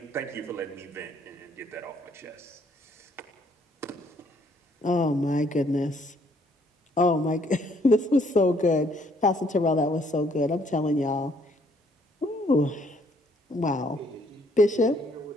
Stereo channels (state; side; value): normal; both; correlation 0.65